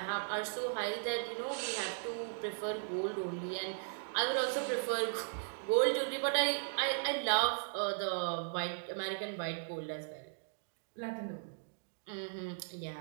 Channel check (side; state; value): left; silent; digital silence